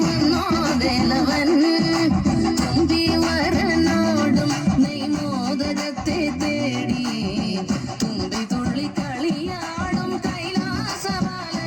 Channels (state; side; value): identical; both; correlation 1.00